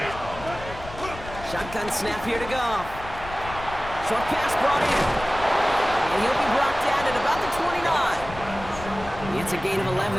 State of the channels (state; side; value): noise; left; rumble, 13 dB below the sound